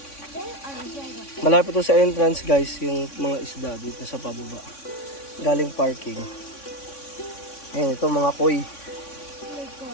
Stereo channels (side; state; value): right; late; 3.6 ms